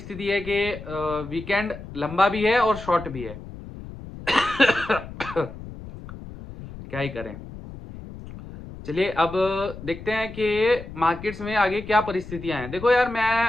है कि वीकेंड लंबा भी है और शॉर्ट भी है। क्या ही करें। चलिए अब देखते हैं कि मार्केट्स में आगे क्या परिस्थितियां हैं। देखो यार,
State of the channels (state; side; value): noise; left; rumble, 13 dB below the sound